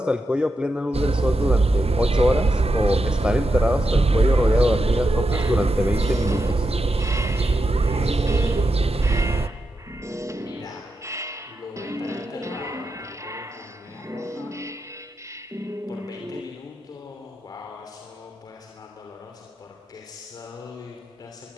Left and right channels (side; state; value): both; normal; correlation 0.87